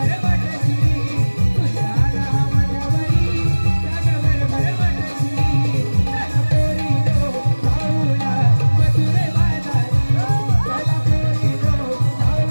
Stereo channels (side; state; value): both; inverted; correlation -1.00